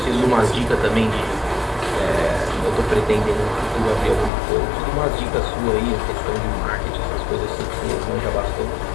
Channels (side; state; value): right; drops out; at 4.3 s